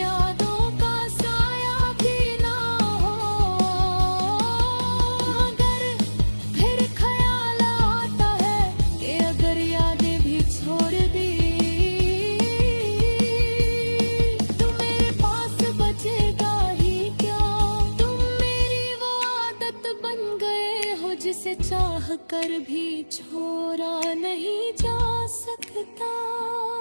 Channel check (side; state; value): both; inverted; correlation -1.00